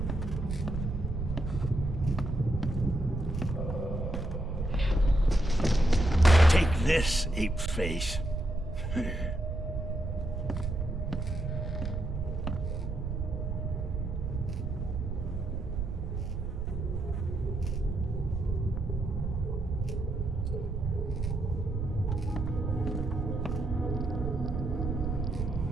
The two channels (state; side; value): noise; right; rumble, 3 dB below the sound